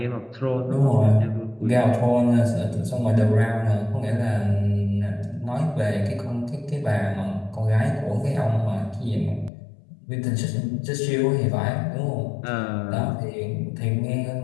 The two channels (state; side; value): drops out; right; at 9.5 s